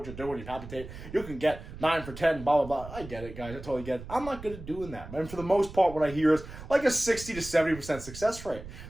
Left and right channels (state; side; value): noise; right; rumble, 13 dB below the sound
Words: you're doing, you palpitate, you can get 9 for 10, blah, blah, blah. I get it, guys. I totally get it. I'm not good at doing that. And for the most part, what I hear is like a 60 to 70% success rate.